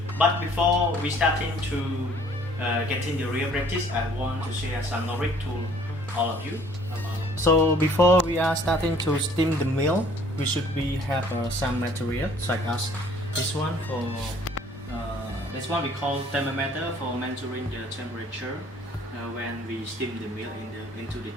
But before we starting to get in the real practice, I want to share some knowledge to all of you. So before we are starting to steam the milk, we should have some material such as this one this one we call thermometer for measuring the temperature when we steam the milk into the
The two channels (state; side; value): normal; both; correlation 0.57